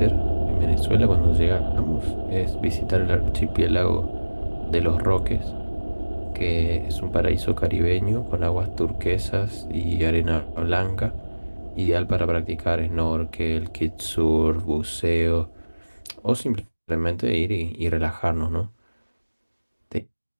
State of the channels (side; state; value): both; inverted; correlation -1.00